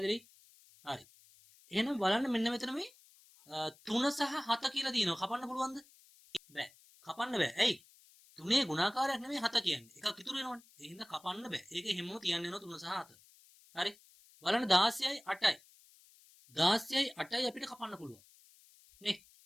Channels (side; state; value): left; noise; hiss, 26 dB below the sound